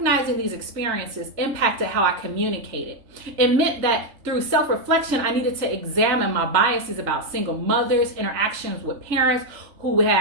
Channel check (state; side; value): late; left; 3.4 ms